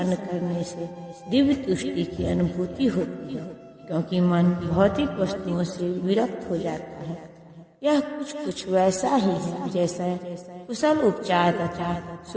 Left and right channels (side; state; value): both; identical; correlation 1.00